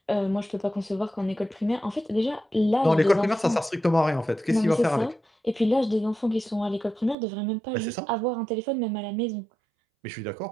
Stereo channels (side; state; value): left; drops out; at 7.2 s